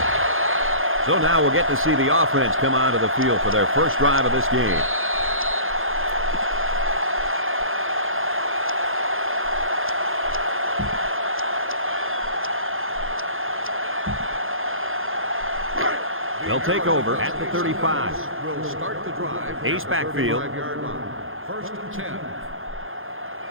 So now we'll get to see the offense come onto the field for their first drive of this game. They'll take over at the 35. Will start the drive. Ace backfield. 35-yard line. 1st and 10.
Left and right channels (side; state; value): left; late; 0.60 ms